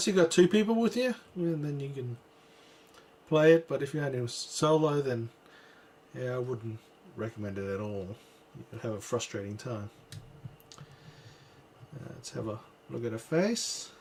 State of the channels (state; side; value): identical; both; correlation 1.00